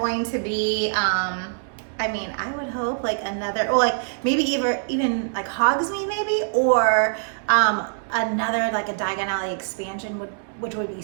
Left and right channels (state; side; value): silent; left; digital silence